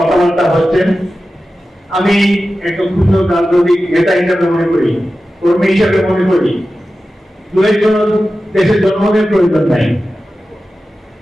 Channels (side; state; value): both; normal; correlation 0.94